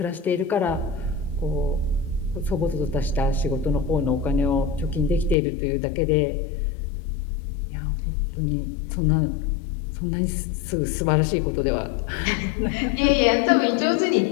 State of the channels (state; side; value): drops out; right; at 5.4 s